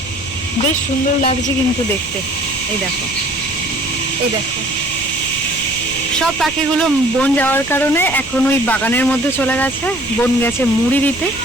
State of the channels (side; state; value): right; noise; rumble, 18 dB below the sound